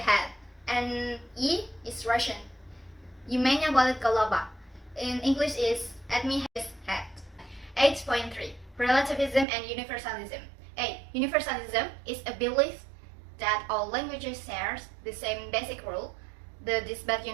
And E is Russian. Юмenya болит голова. In English is at me his head. 8.3 relativism and universalism. A. Universalism is a belief that all languages share the same basic rule, the disbat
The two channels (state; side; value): drops out; left; at 9.5 s